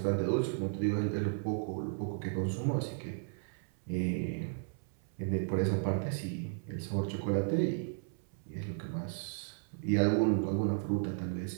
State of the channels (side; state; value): left; silent; 55 dB below the other